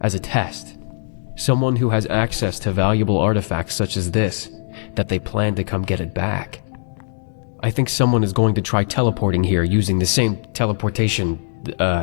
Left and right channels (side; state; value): right; silent; digital silence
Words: as a test. Someone who has access to valuable artifacts such as this, that they plan to come get it back. I think someone is going to try teleporting here using the same teleportation